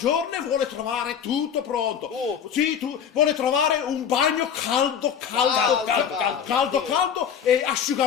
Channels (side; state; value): right; quieter; 8.0 dB